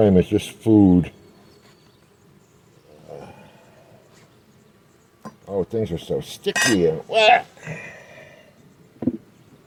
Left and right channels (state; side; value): identical; both; correlation 1.00